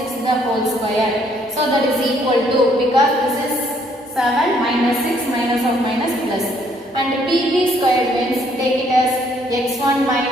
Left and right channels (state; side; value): normal; both; correlation 0.66